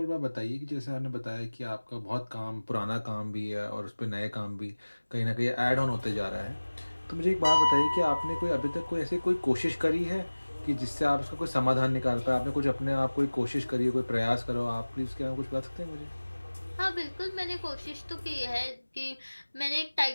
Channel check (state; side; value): inverted; both; correlation -1.00